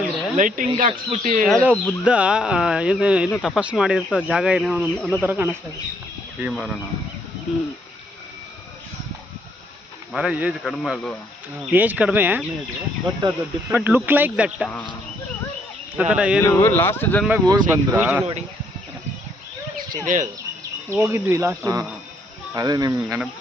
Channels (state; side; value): normal; both; correlation 0.70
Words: ಅಂದ್ರೆ ಲೈಟಿಂಗ್ ಹಾಕ್ಸ್ಬಿಟ್ಟು ಯಾವುದೋ ಬುದ್ಧ ಏನು ತಪಸ್ಸು ಮಾಡಿರ್ತ ಜಾಗ ಏನೋ ಅನ್ನೋ ಥರ ಕಾಣಿಸ್ತಾ ಇದೆ. ಈ ಮರನ ಹ್ಞೂ ಮರ ಏಜ್ ಕಡಿಮೆ ಅಲ್ವಾ? ಏಜ್ ಕಡಿಮೆ ಬಟ್ ಅದು ಬಟ್ ಲುಕ್ ಲೈಕ್ ದಟ್ ಆ ಥರ ಏನು ಲಾಸ್ಟ್ ಜನ್ಮಗೆ ಹೋಗಿ ಬಂದ್ರ ನೋಡಿ ಹೋಗಿದ್ವಿ ಲಾಸ್ಟ್. ಅದೇ ನಿಮ್